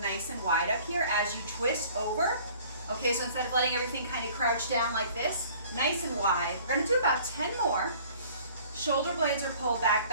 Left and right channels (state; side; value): inverted; both; correlation -0.51